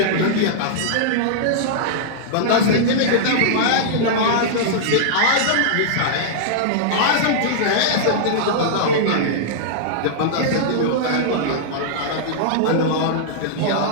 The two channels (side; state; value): both; different; correlation -0.02